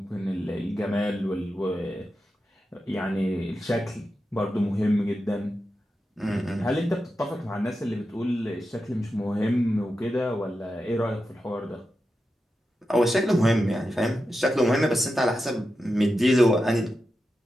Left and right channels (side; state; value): both; normal; correlation 0.90